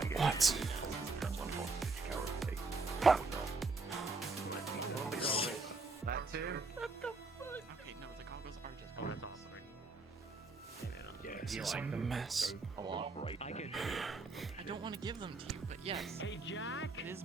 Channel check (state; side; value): quieter; left; 3.8 dB